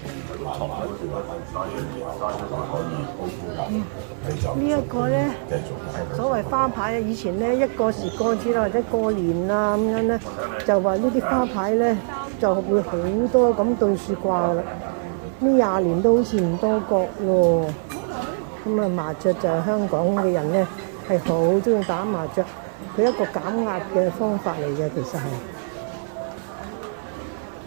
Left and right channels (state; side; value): silent; left; digital silence